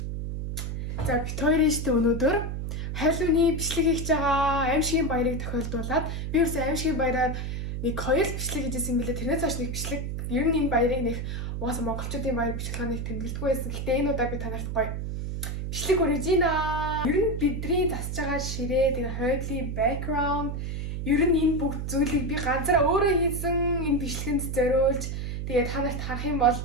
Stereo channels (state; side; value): noise; right; hum, 4 dB below the sound